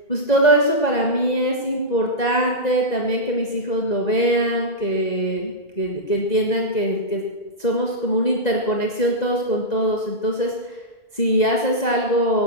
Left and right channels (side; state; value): right; late; 2.0 ms